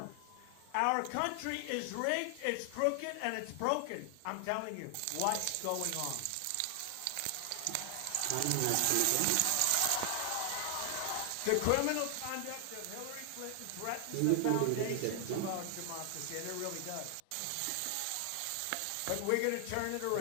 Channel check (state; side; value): different; both; correlation 0.00